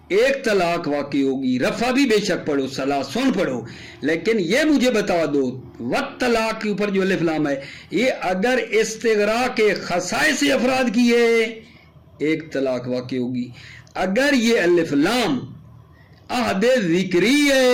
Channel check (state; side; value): identical; both; correlation 1.00